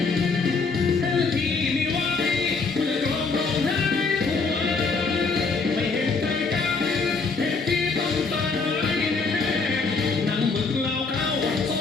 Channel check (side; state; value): right; quieter; 4.4 dB